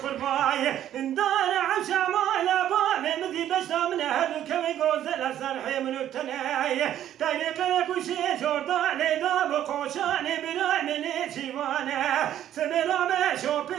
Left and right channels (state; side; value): quieter; left; 11.4 dB